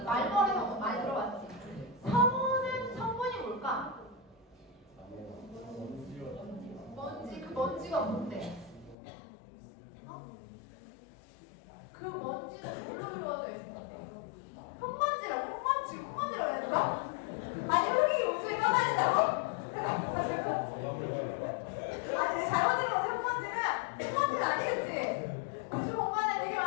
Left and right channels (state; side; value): drops out; right; at 9.0 s